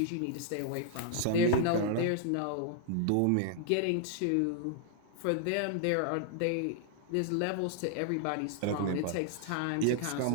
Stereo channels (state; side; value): different; both; correlation -0.01